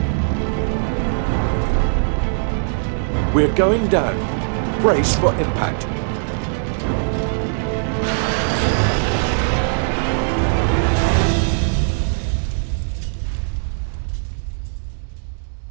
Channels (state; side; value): silent; left; digital silence